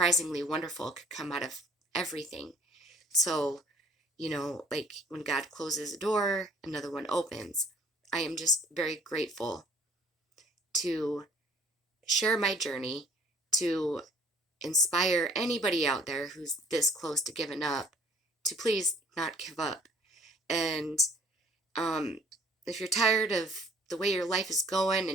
wonderful could come out of everything. So, like when God closes a door, another one opens. I am just very grateful to share my journey, to inspire anybody out there who's this close to giving up to please not give up. And if you're tired of the way your life is going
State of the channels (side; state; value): both; normal; correlation 0.55